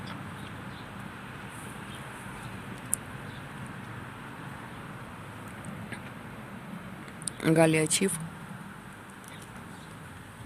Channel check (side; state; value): both; identical; correlation 1.00